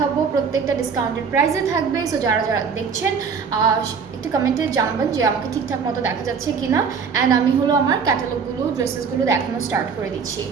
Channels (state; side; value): quieter; left; 6.0 dB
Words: প্রত্যেকটা ডিসকাউন্টেড প্রাইসে থাকবে। সো যারা যারা দেখছেন একটু কমেন্টে জানাবেন যে আমাকে ঠিকঠাক মতো দেখা যাচ্ছে কিনা অ্যান্ড আমি হলো আমার ক্যাটালগুলো ড্রেসেসগুলো দেখানো স্টার্ট করে দিচ্ছি।